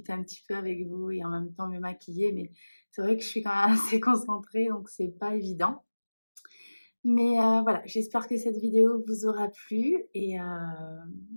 un petit peu avec vous et en même temps me maquiller, mais c'est vrai que je suis quand même assez concentrée donc c'est pas évident. Mais voilà, j'espère que cette vidéo vous aura plu et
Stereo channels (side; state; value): both; inverted; correlation -1.00